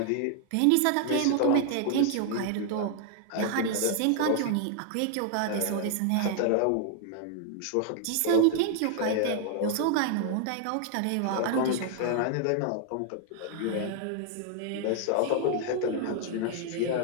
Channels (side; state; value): both; different; correlation 0.00